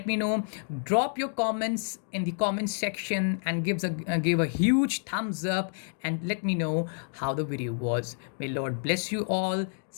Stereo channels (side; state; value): right; silent; digital silence